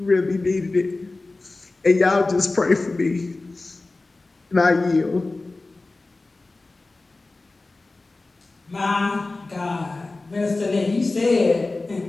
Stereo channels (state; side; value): quieter; right; 3.3 dB